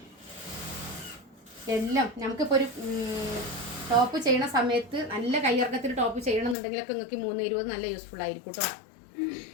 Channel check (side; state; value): right; drops out; at 6.6 s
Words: എല്ലാം നമുക്കിപ്പോൾ ഒരു ടോപ്പ് ചെയ്യണ സമയത്ത് നല്ല കയ്യിറക്കത്തിൽ ടോപ്പ് ചെയ്യണമെന്നുണ്ടെങ്കിലൊക്കെ നിങ്ങൾക്ക് 3.20 നല്ല യൂസ്ഫുൾ ആയിരിക്കും കേട്ടോ.